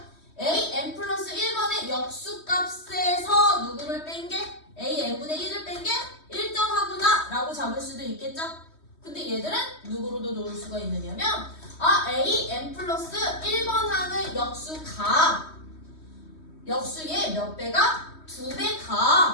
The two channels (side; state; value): right; late; 3.2 ms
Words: AN 플러스 1번의 역수값에서 누구를 뺀 게? AN분의 1을 뺀 게 1정하구나 라고 잡을 수도 있겠죠? 근데 얘들은 누구로도 놓을 수가 있느냐면 AN 플러스 1번 항의 역수의 몇 배가?